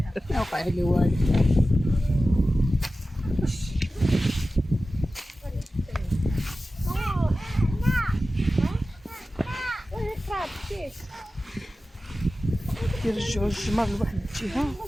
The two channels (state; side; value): normal; both; correlation 0.95